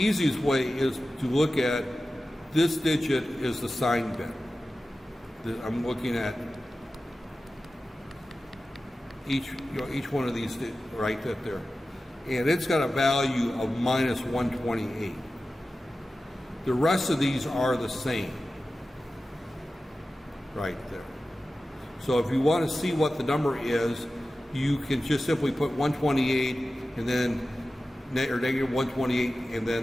way is to look at this digit is the signed bit. I'm looking at each one of these right there, and it's got a value of -128. The rest of these are the same, right there. So if you want to see what the number is, you can just simply put 128 and then or negative 128 and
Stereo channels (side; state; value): both; normal; correlation 0.94